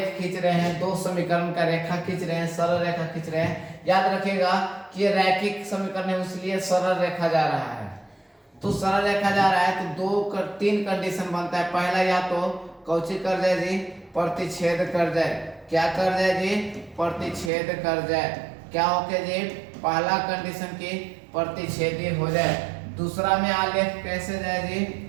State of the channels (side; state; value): left; drops out; at 17.5 s